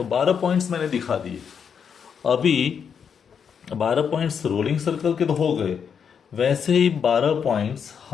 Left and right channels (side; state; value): right; quieter; 7.1 dB